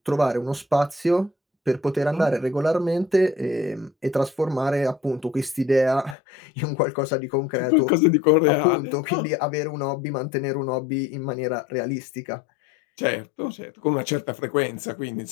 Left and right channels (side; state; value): right; drops out; at 6.2 s